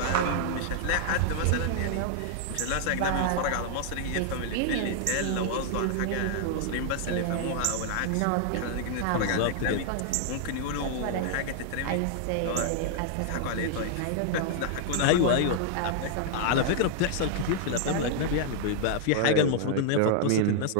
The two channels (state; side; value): different; both; correlation -0.01